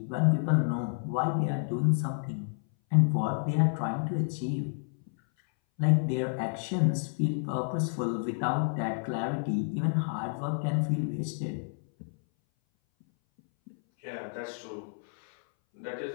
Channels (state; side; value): silent; right; 58 dB below the other